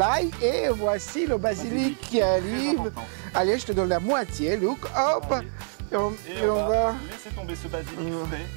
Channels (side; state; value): left; silent; digital silence